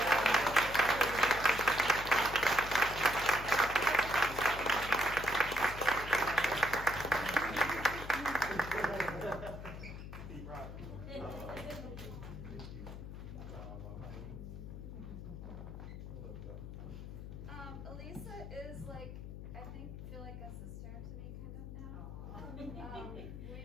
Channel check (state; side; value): noise; left; hum, 10 dB below the sound